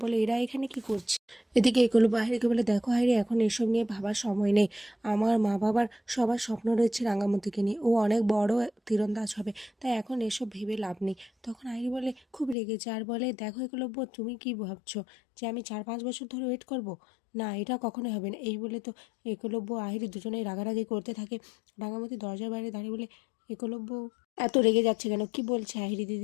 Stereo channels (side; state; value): right; drops out; at 12.6 s